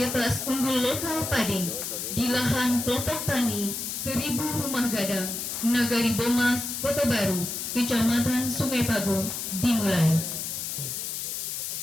unggul lokal padi di lahan kelompok tani 1000 Rumah Gadang, Nagari Bomas, Kota Baru, Kecamatan Sungai Pago dimulai.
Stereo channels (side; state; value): left; noise; hiss, 4 dB below the sound